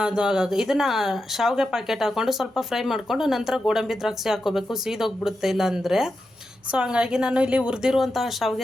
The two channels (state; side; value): normal; both; correlation 0.88